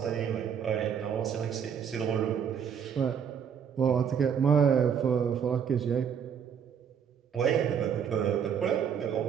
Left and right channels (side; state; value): left; quieter; 7.7 dB